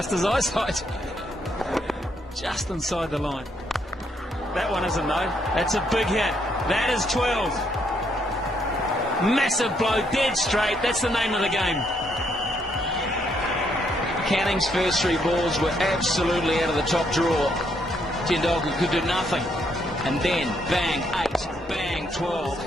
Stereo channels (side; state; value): both; normal; correlation 0.73